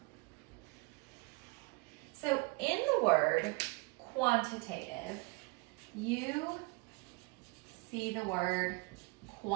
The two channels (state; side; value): quieter; left; 27.5 dB